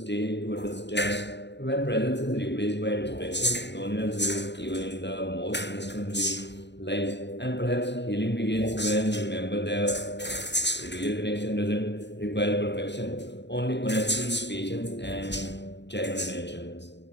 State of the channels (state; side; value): late; right; 0.51 ms